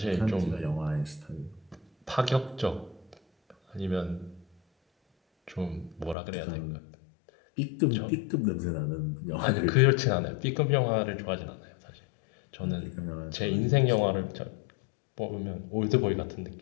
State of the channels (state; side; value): drops out; right; at 6.2 s